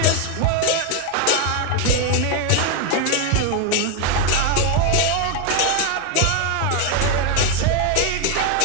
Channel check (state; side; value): different; both; correlation 0.01